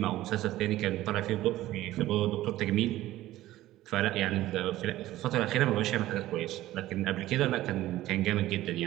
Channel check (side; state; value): left; quieter; 15.4 dB